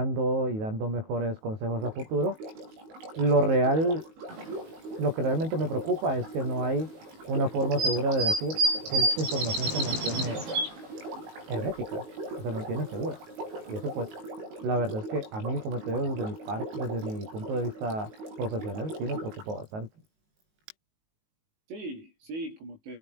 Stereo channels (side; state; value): left; late; 19 ms